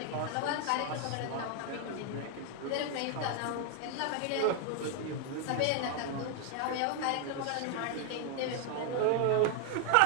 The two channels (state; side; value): different; both; correlation 0.00